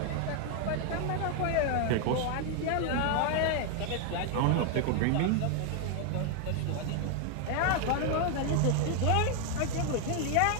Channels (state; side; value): different; both; correlation 0.01